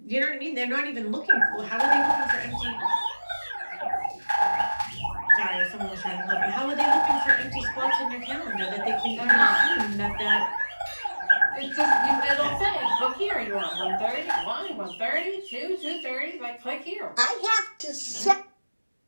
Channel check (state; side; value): inverted; both; correlation -1.00